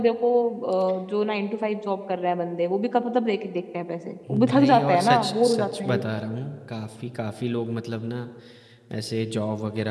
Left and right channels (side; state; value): both; identical; correlation 1.00